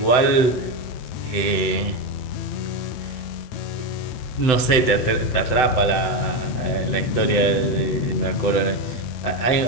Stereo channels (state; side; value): late; right; 7.9 ms